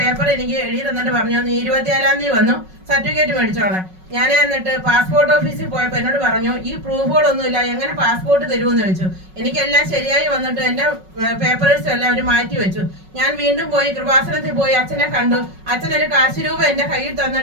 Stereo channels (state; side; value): late; left; 5.4 ms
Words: എനിക്ക് എഴുതി തന്നിട്ട് പറഞ്ഞു നീ 24-ാം തീയതി വന്നു സർട്ടിഫിക്കറ്റ് മേടിച്ചോളാം. ഞാൻ എന്നിട്ട് പാസ്പോർട്ട് ഓഫീസിൽ പോയപ്പോൾ എന്നോട് പറഞ്ഞു ഈ പ്രൂഫുകളൊന്നുമില്ല, എങ്ങനെ പാസ്പോർട്ട് തരുമെന്ന് ചോദിച്ചു. എനിക്കെല്ലാം ശരിയായി വന്നിട്ട് എൻ്റെ പേപ്പേഴ്സ് എല്ലാം അവർ മാറ്റി വെച്ചു. ഞാൻ വീണ്ടും പോയി കൃപാസനത്തിൽ പോയി അച്ഛനെ കണ്ടു. അച്ഛനൊരു കാശ് രൂപ എൻ്റെ കയ്യിൽ